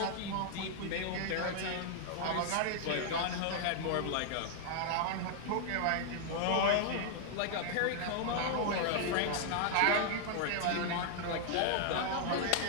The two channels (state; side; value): different; both; correlation 0.00